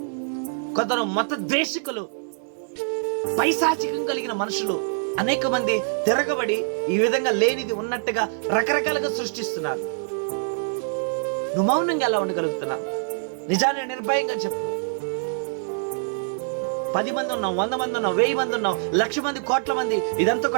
కొందరు మత ద్వేషికులు, పైశాచికం కలిగిన మనుషులు అనేక మంది తిరగబడి ఈ విధంగా లేనిది ఉన్నట్టుగా రకరకాలుగా సృష్టిస్తున్నారు. నువ్వు మౌనంగా ఎలా ఉండగలుగుతున్నావు? నిజాన్ని నిర్భయంగా చెప్పు. 10 మంది ఉన్నాం, 100 మంది ఉన్నాం, 1000 మంది ఉన్నాం, 1,00,000 మంది, కోట్ల మంది, ఇదంతా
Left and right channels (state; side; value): silent; left; digital silence